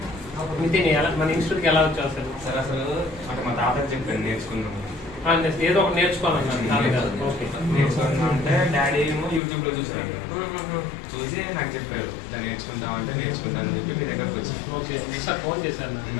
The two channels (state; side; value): drops out; right; at 9.4 s